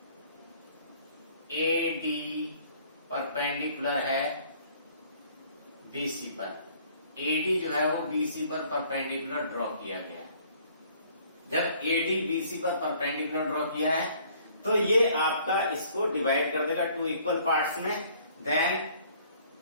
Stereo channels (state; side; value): inverted; both; correlation -0.58